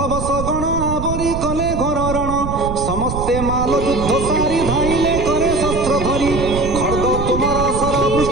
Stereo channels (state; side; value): noise; right; rumble, 5 dB below the sound